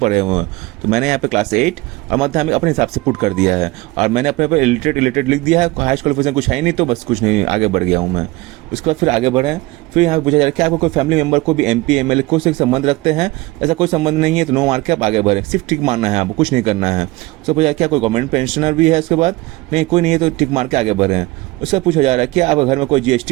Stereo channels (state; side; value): quieter; left; 20.8 dB